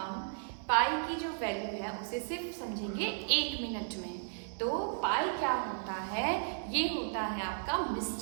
पाई की जो वैल्यू है उसे सिर्फ समझेंगे 1 मिनट में। तो पाई क्या होता है? ये होता है आपका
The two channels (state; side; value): silent; left; digital silence